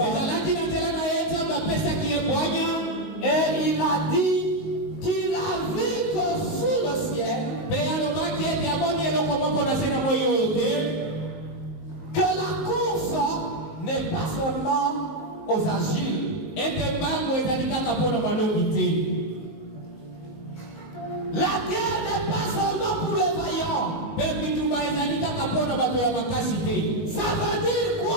na nzela na ye nzambe apesaki ye bwanya, et il a dit qu'il a vu que sous le ciel, mpe alobaki ete amoni eloko moko na se na moi oyo te, que la course n'est pas seulement aux agiles. ete mbango ezali kaka mpo na balobi te. La guerre n'est pas seulement pour les vaillants. Mpe bitumba ezali kaka mpo na bato ya makasi te. Ça veut dire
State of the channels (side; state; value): right; late; 19 ms